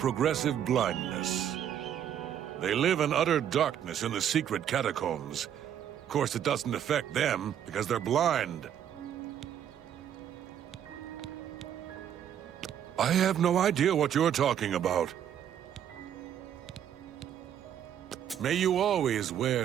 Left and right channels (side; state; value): left; quieter; 9.7 dB